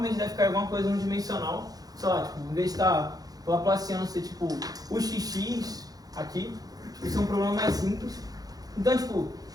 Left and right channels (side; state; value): left; late; 0.18 ms